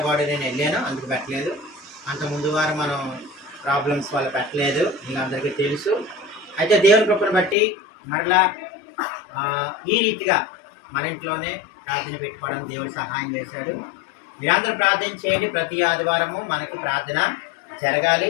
నేను వెళ్ళాను, అందుకు పెట్టలేదు. అంత ముందు వారం మనం ప్రాబ్లమ్స్ వల్ల పెట్టలేదు, మీకు అందరికీ తెలుసు. అయితే దేవుని కృపను బట్టి మరలా ఈ రీతిగా మన ఇంట్లోనే ప్రార్థన పెట్టుకోవడం దేవుడు సహాయం చేశాడు. మీరందరూ ప్రార్థన చేయండి. ప్రతి ఆదివారము మనకి ప్రార్థన జరగాలి.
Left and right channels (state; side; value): drops out; right; at 7.6 s